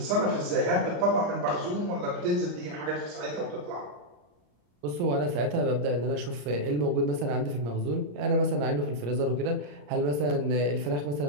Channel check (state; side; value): late; left; 34 ms